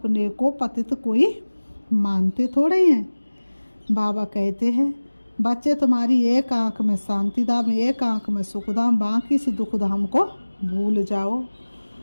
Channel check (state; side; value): inverted; both; correlation -1.00